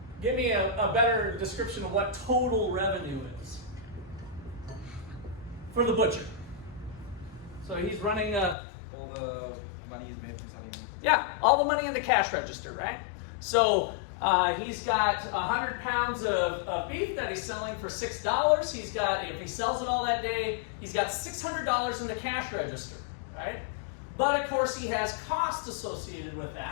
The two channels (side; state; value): right; drops out; at 8.6 s